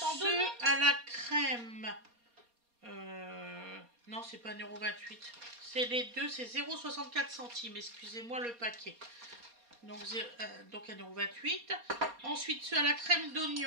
donner. ceux à la crème. Non, c'est pas 1,28 €. C'est les deux, c'est 0,64 centimes. Excusez-moi le paquet. Donc 1,28 €. Ensuite, ceux à la crème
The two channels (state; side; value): late; left; 4.2 ms